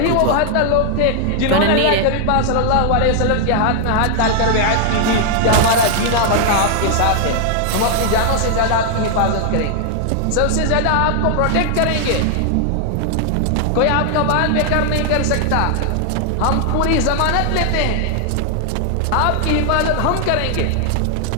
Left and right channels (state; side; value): different; both; correlation 0.00